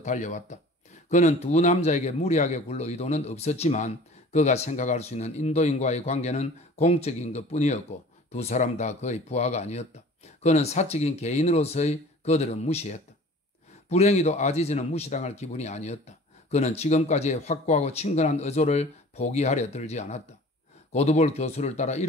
달려왔다. 그는 두 남자에게 무리하게 굴러 의도는 없었지만 그가 생각할 수 있는 인도인과의 관계는 공적인 것뿐이었고 두 사람 다 그의 부하가 아니었다. 그는 사적인 개인으로서의 그들은 무시했다. 불행히도 아지즈는 무시당할 기분이 아니었다. 그는 지금까지의 확고하고 친근한 의조를 포기하려 들지 않았다. 고두볼 교수를 따라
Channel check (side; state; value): both; normal; correlation 0.45